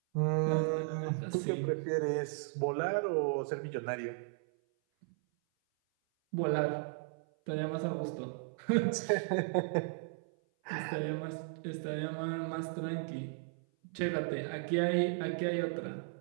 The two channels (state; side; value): silent; left; 54 dB below the other